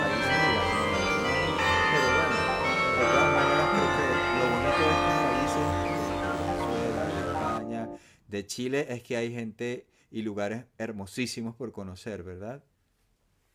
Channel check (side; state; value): both; identical; correlation 1.00